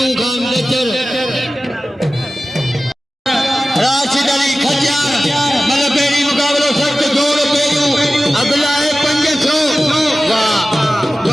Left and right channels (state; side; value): normal; both; correlation 0.96